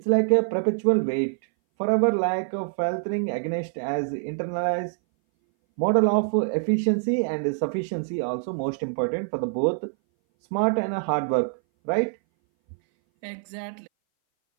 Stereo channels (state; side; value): silent; left; 59 dB below the other